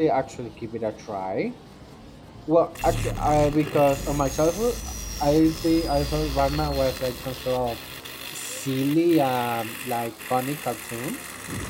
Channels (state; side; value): identical; both; correlation 1.00